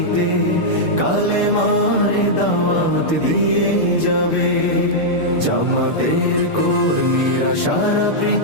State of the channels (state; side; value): late; right; 6.8 ms